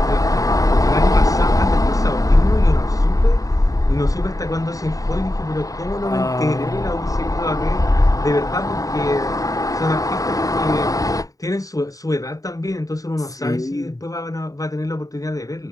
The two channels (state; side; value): late; right; 0.17 ms